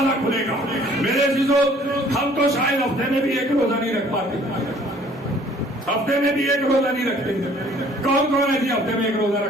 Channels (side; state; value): both; normal; correlation 0.56